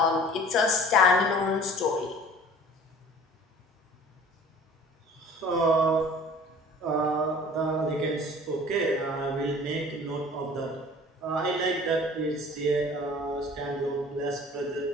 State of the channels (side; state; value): both; normal; correlation 0.46